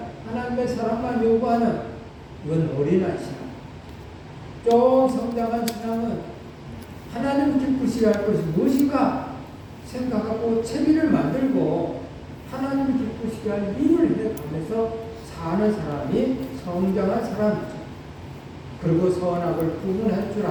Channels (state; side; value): identical; both; correlation 1.00